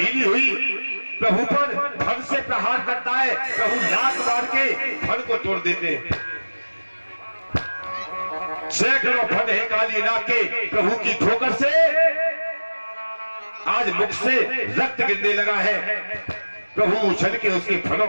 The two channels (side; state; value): both; inverted; correlation -1.00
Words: हुई। प्रभु पर फन से प्रहार करता है, प्रभु लात मार के फन को तोड़ देते हैं। सैकड़ों फन है काली नाग के प्रभु की ठोकर से, आज मुख से रक्त गिरने लगा है। प्रभु उछल के उसके फनों